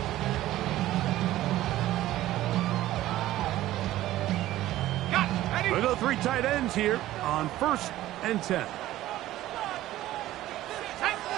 We'll go 3 tight ends here on first and 10.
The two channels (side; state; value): left; quieter; 14.9 dB